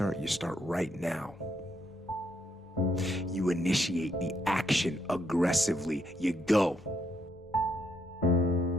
You start right now. You initiate the action aggressively. You go.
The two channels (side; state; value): both; normal; correlation 0.75